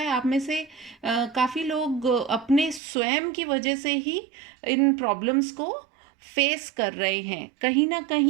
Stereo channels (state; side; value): drops out; left; at 2.8 s